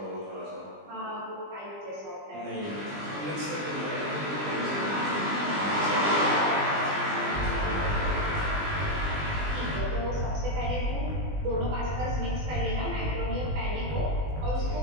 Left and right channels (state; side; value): late; left; 20 ms